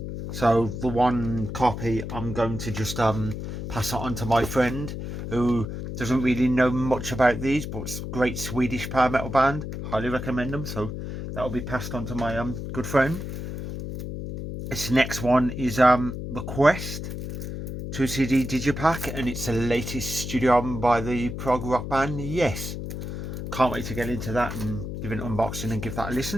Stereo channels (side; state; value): left; noise; hum, 6 dB below the sound